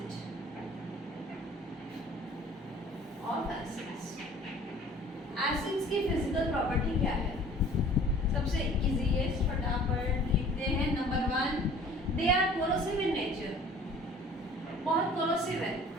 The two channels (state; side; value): normal; both; correlation 0.49